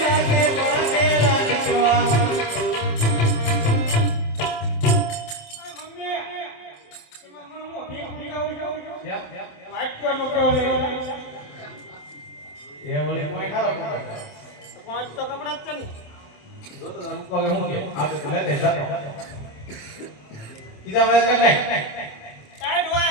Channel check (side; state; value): right; late; 27 ms